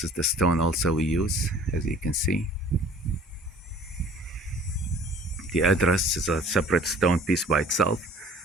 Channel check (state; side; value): normal; both; correlation 0.50